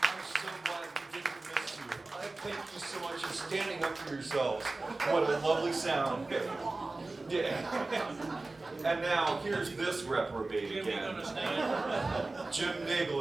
I'm so glad we didn't miss you. Thank you so much. standing up for yourselves. What a lovely sound. Yeah. And now, here's this reprobate again. Jim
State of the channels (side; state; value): left; quieter; 3.2 dB